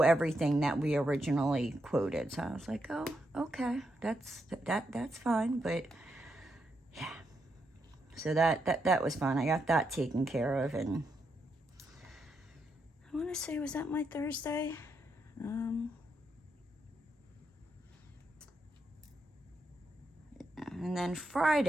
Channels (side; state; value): both; normal; correlation 0.82